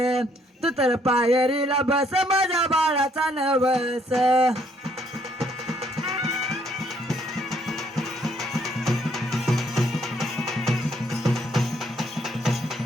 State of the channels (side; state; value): both; normal; correlation 0.68